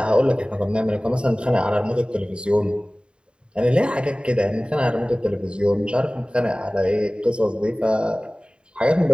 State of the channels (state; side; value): late; left; 0.052 ms